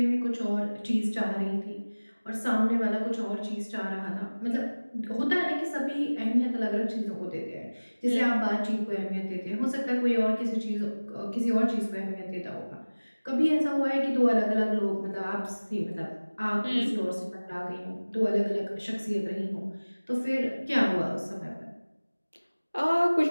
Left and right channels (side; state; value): both; inverted; correlation -1.00